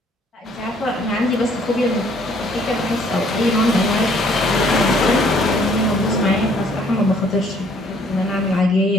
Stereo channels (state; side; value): normal; both; correlation 0.62